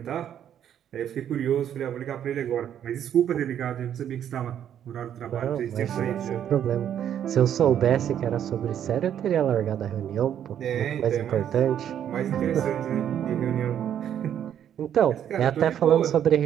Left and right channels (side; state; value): left; quieter; 9.8 dB